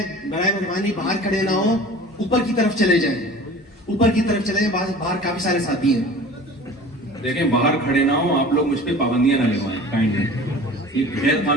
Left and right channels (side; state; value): both; normal; correlation 0.41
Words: برائے مہربانی باہر کھڑے نہ ہو, اوپر کی طرف چلے جائیں, اوپر کی طرف چلے جائیں, باہر کافی سارے ساتھی ہیں. دیکھیں باہر کھڑے نہ ہو, آپ لوگ مجھ پہ پابندیاں نہ لگوائیں کائنڈلی, یہ غیر